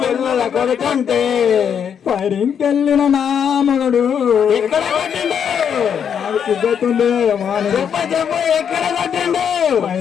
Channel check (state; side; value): quieter; right; 7.9 dB